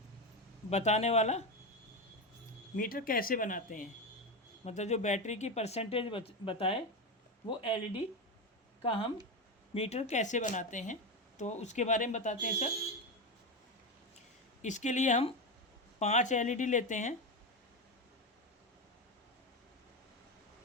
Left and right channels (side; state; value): both; normal; correlation 0.15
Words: बताने वाला मीटर कैसे बनाते हैं। मतलब जो बैटरी की परसेंटेज बताए वो एलईडी का हम मीटर कैसे बनाते हैं, तो उसके बारे में बताते हैं सर। इसके लिए हम 5 एलईडी लेते हैं।